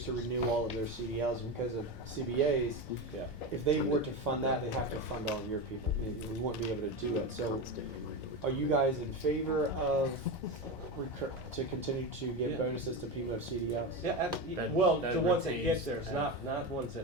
to renew all of their CDLs because of CBAs. Yeah. If they were to fund that, they'd have to fund all of your people. We wouldn't be able to do it. So are you guys in favor of to continue to give Yeah. bonuses to people who have CDLs? Yeah, That- well, that the ones that get retains theirs, not ones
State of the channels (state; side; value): noise; right; hum, 25 dB below the sound